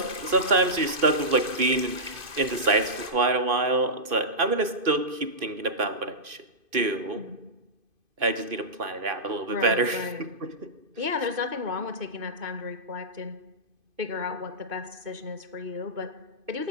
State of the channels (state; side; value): late; left; 2.5 ms